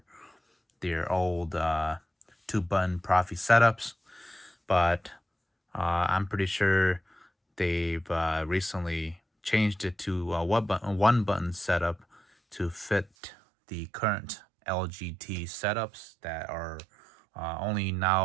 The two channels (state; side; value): drops out; left; at 13.1 s